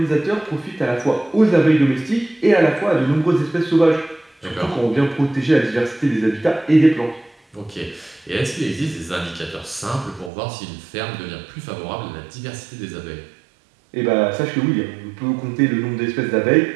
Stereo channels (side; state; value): left; drops out; at 10.3 s